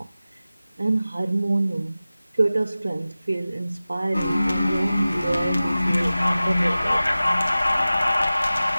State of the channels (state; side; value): inverted; both; correlation -0.96